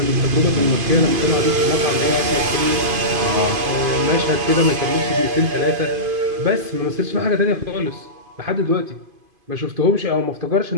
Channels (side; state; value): left; late; 2.5 ms